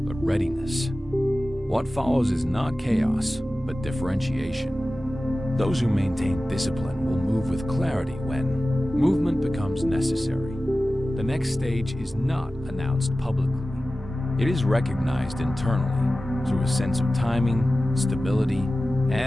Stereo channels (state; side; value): normal; both; correlation 0.96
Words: readiness. What follows is not chaos, but differentiation. Those who maintain discipline will move with clarity when movement becomes necessary. The next stage is not announced publicly. It is recognized internally through a sense of timing, stability,